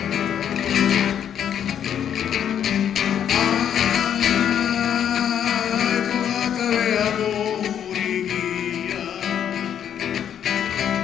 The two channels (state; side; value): quieter; right; 9.2 dB